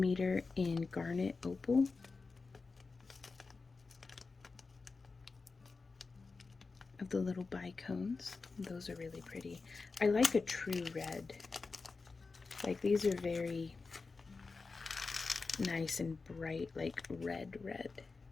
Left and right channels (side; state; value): right; quieter; 4.2 dB